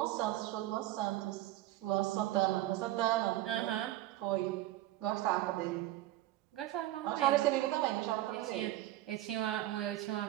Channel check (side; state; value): left; quieter; 15.6 dB